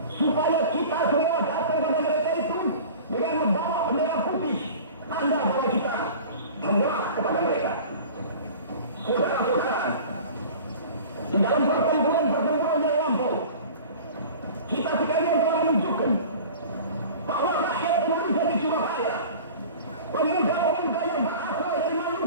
supaya kita semua datang pada mereka itu dengan membawa bendera putih, tanda bahwa kita menyerah kepada mereka. Saudara-saudara, di dalam pertempuran yang lampau, kita sekalian telah menunjukkan bahwa rakyat Indonesia di Surabaya, pemuda-pemuda yang berasal dari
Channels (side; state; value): both; inverted; correlation -0.41